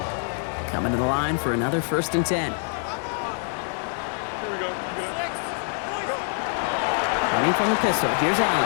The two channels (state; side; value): silent; right; 62 dB below the other